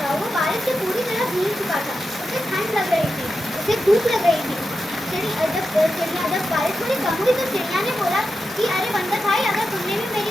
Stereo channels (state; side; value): normal; both; correlation 0.89